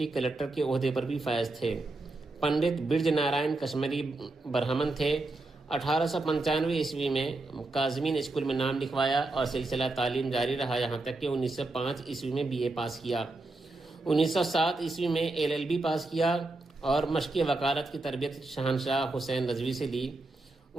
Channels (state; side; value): quieter; left; 3.0 dB